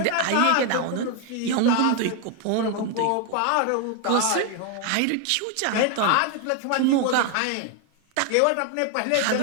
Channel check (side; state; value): both; different; correlation 0.01